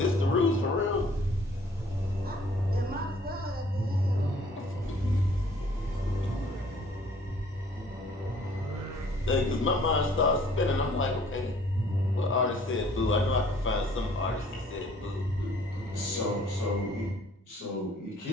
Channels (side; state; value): both; normal; correlation 0.57